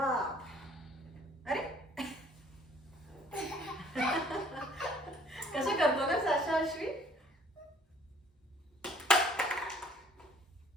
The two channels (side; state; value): both; normal; correlation 0.57